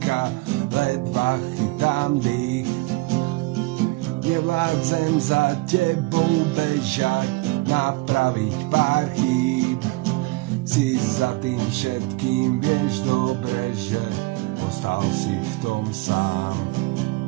ledva chytám dých. Nevládzem za tebou bežať, napraviť pár chýb. Si za tým všetkým, vieš dobre, že ostal si v tom sám.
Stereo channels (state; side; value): quieter; left; 22.1 dB